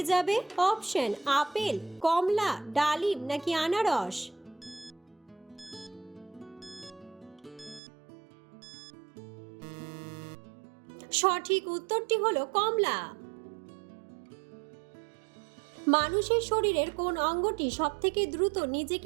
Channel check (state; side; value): drops out; left; at 7.8 s